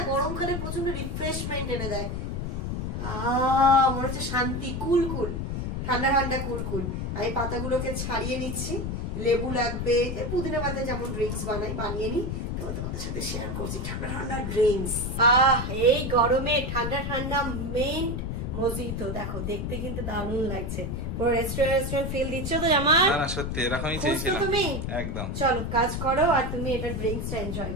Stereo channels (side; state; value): left; noise; rumble, 3 dB below the sound